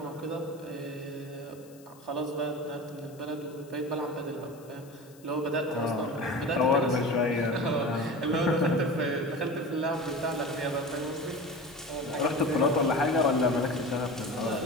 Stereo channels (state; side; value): noise; left; hiss, 26 dB below the sound